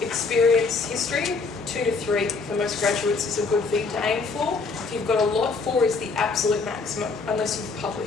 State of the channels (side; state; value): right; quieter; 4.3 dB